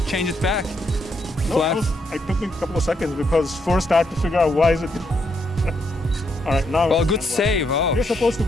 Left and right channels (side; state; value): both; normal; correlation 0.77